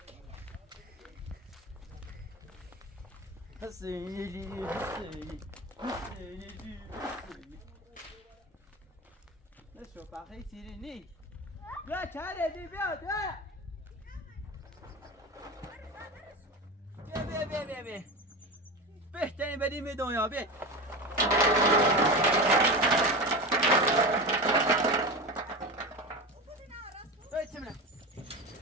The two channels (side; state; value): both; normal; correlation 0.25